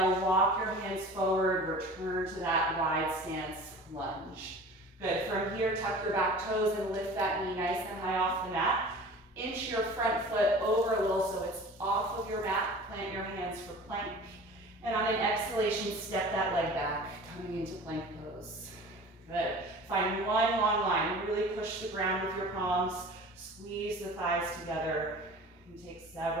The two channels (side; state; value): both; normal; correlation 0.41